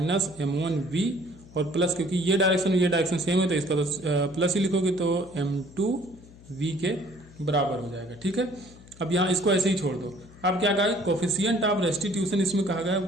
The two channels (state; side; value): noise; left; hum, 22 dB below the sound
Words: m1 v और प्लस, क्योंकि ये डायरेक्शन सेम है तो इसका तो प्लस ही लिखोगे तो m2 v के बराबर हो जाएगा। ठीक है, अब यहाँ इसको ऐसे ही छोड़ दो। अब क्या कहा है, कोफिशिएंट ऑफ रेस्टिट्यूशन इसमें कहा गया